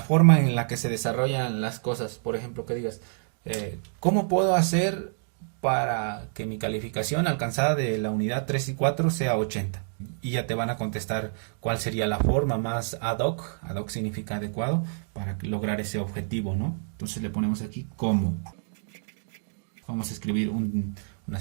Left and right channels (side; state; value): left; silent; digital silence